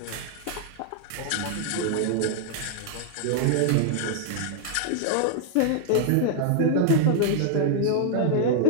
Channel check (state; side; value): different; both; correlation -0.01